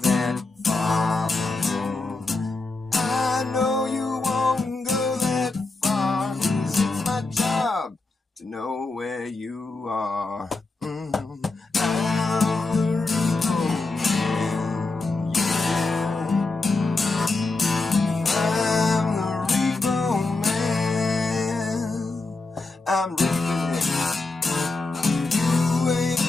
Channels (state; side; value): quieter; right; 3.4 dB